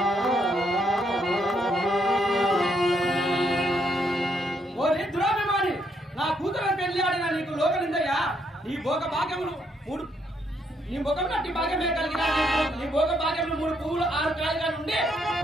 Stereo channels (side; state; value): both; normal; correlation 0.74